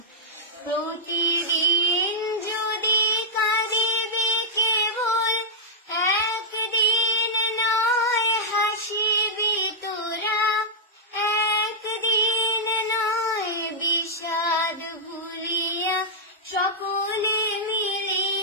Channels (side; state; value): both; normal; correlation -0.09